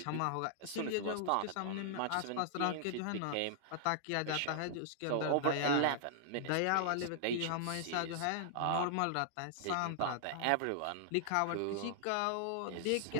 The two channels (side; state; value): both; different; correlation -0.01